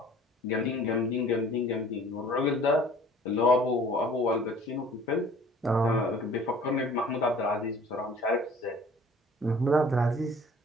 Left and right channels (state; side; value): normal; both; correlation 0.50